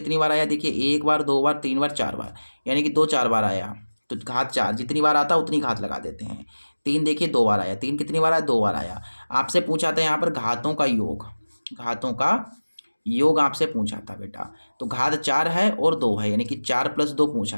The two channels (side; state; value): both; inverted; correlation -1.00